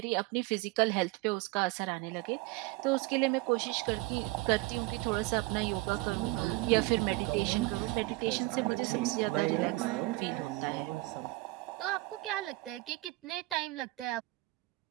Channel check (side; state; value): left; quieter; 21.5 dB